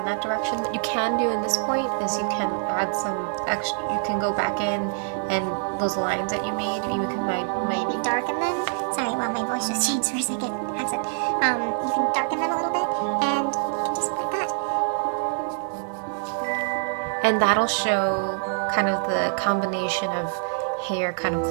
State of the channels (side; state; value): left; silent; digital silence